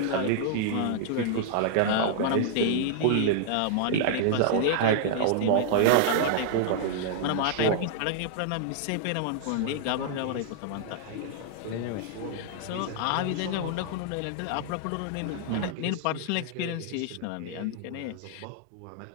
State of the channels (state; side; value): different; both; correlation -0.01